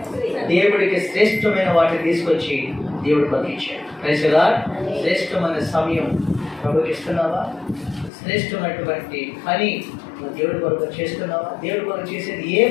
దేవుడికి శ్రేష్టమైన వాటిని తీసుకొచ్చి దేవుడు పంపించాడు. Praise the lord. శ్రేష్టమైన సమయం ప్రభుకి ఇస్తున్నావా? శ్రేష్టమైనటువంటి పని నువ్వు దేవుడి కొరకు చేస్తున్నావా? దేవుడి కొరకు చేసేది ఏ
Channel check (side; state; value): right; drops out; at 8.1 s